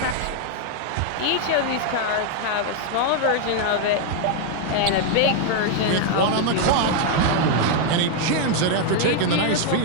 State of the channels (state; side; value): different; both; correlation 0.00